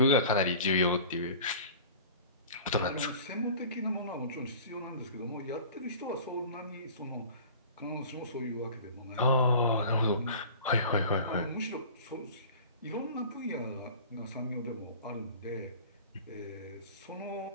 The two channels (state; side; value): inverted; both; correlation -0.41